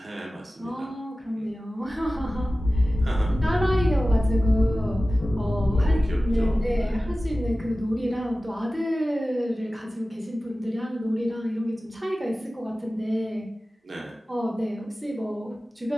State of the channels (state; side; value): normal; both; correlation 0.96